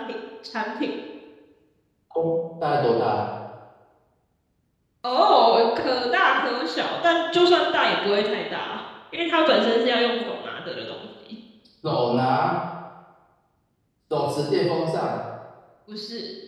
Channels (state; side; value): identical; both; correlation 1.00